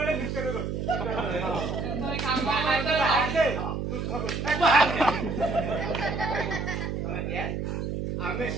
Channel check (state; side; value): noise; right; hum, 3 dB below the sound